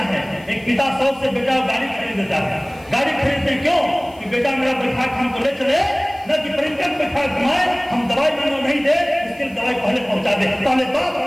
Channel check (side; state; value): left; noise; hiss, 28 dB below the sound